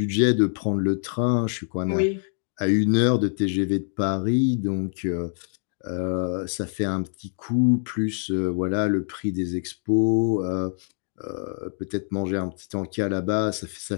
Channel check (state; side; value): silent; right; 62 dB below the other